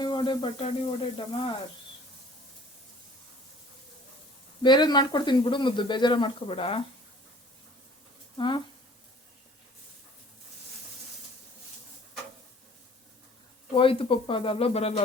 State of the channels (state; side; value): normal; both; correlation 0.51